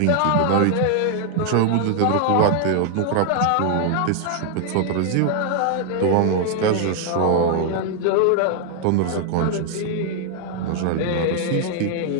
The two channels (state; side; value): different; both; correlation 0.00